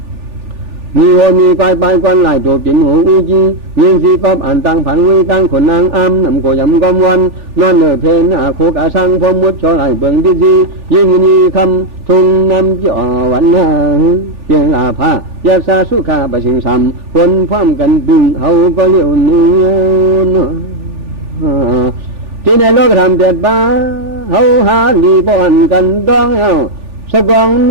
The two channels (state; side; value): late; left; 3.4 ms